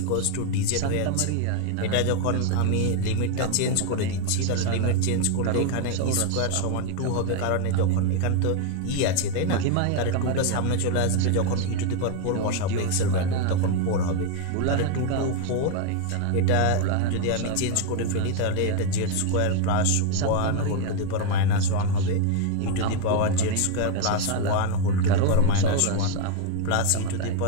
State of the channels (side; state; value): both; different; correlation 0.01